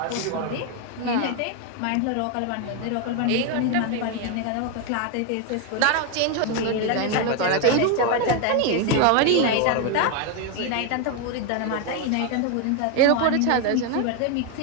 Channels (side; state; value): both; different; correlation 0.01